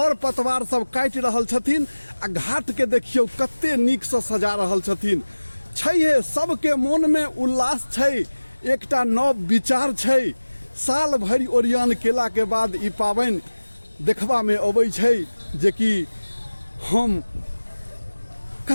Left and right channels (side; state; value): both; inverted; correlation -1.00